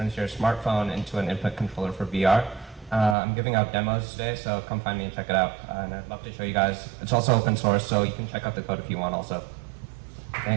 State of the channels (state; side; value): drops out; left; at 3.2 s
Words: your smartphone into an input controller for VR. I'm giving out demos today, so come find me and check it out. And I'd love to show you guys. It's also open source, so you can check out the code if you want also.